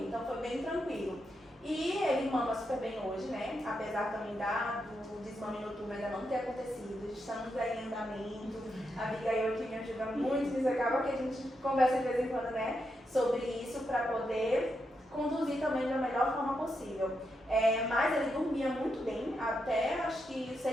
então foi bem tranquilo. E ele mama super bem hoje, né? Apesar também do desmame noturno ainda não ter acontecido, estamos aí em andamento. A Abigail que me ajuda muito, isso acaba que a gente conversa de vez em quando, né? Sobre isso para poder conduzir também da melhor forma possível. Mas ele dormia muito bem, até acho que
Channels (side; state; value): both; normal; correlation 0.84